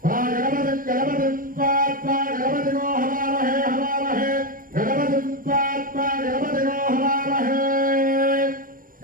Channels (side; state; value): left; late; 0.41 ms